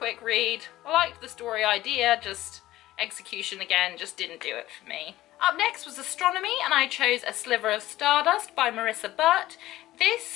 read. I liked the story idea, just execution again just didn't do it for me. Up next was Astronomy, and I chose A Sliver of Stardust by Marissa Burt.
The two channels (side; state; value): right; quieter; 15.6 dB